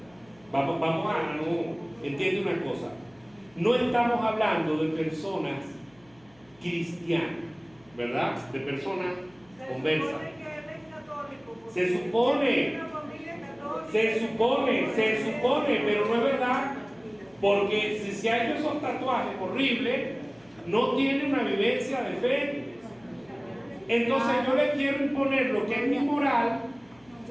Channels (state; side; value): noise; left; hum, 30 dB below the sound